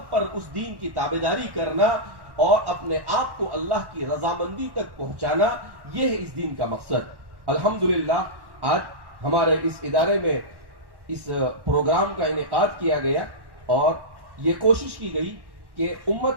پر اس دین کی تابعداری کرنا اور اپنے آپ کو اللہ کی رضامندی تک پہنچانا, یہ ہے اس دین کا مقصد. الحمدللہ آج ہمارے اس ادارے میں اس پروگرام کا انعقاد کیا گیا اور یہ کوشش کی گئی کہ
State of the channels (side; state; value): left; late; 1.1 ms